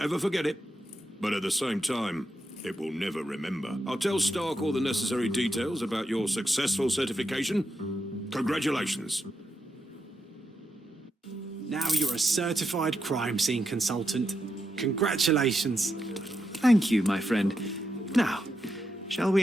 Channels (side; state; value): both; normal; correlation 0.84